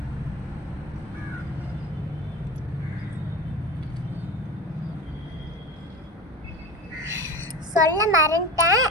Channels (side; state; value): both; normal; correlation 0.30